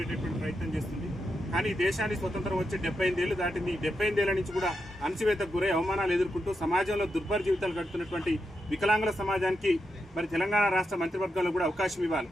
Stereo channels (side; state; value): both; normal; correlation 0.86